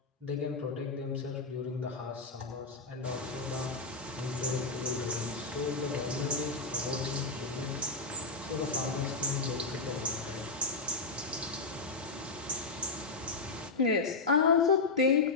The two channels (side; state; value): right; quieter; 3.8 dB